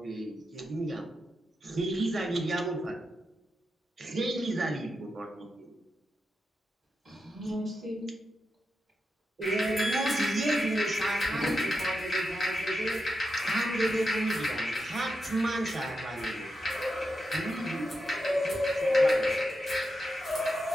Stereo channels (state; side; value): normal; both; correlation 0.87